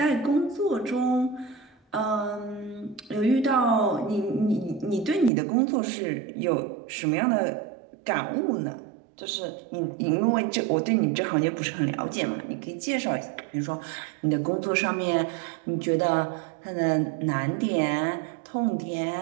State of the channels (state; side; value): drops out; left; at 5.3 s